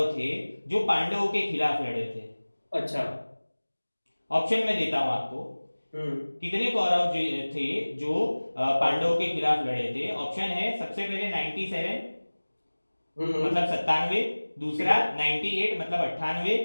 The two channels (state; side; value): inverted; both; correlation -1.00